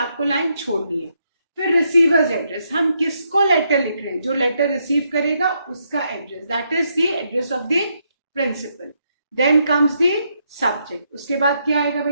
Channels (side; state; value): both; inverted; correlation -0.78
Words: लाइन छोड़नी है। फिर रिसीवर्स एड्रेस, हम किसको लेटर लिख रहे हैं, जो लेटर रिसीव करेगा उसका address, that is the address of the principal. Then comes the subject, उसके बाद क्या आएगा